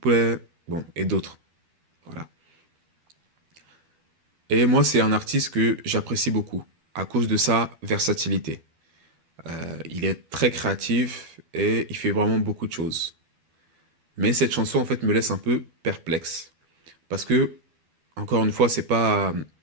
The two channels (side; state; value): left; late; 12 ms